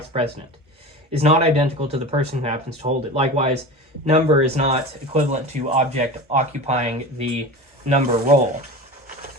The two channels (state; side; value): normal; both; correlation 0.31